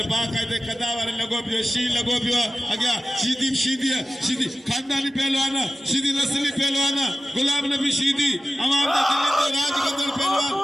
बाकायदे कदावर लगो पियो शी लगो पियो अग्या सीधी खानदानी पहलवान सीधी नस्ली पहलवान गुलाम नबी सीधी अवाम दा दिल्ली दे राज गदर पहलवान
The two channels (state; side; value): normal; both; correlation 0.95